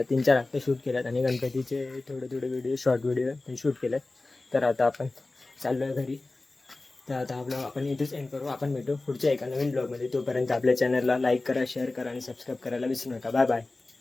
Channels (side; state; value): right; quieter; 3.2 dB